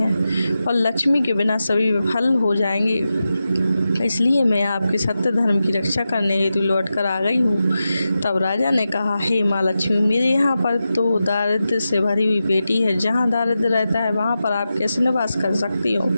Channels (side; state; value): both; inverted; correlation -0.91